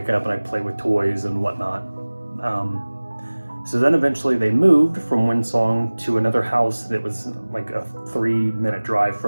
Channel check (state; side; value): inverted; both; correlation -1.00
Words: up and I'd play with toys and whatnot. So then eventually they moved from Windsong to another house that was like a 3-minute drive